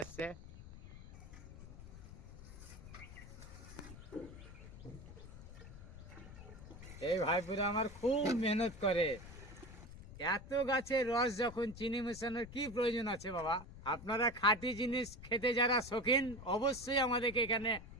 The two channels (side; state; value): left; noise; rumble, 14 dB below the sound